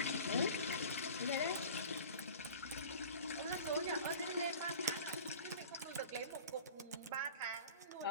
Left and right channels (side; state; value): both; inverted; correlation -0.40